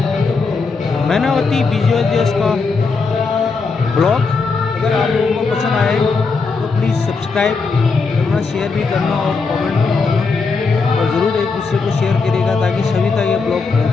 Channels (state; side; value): quieter; right; 4.5 dB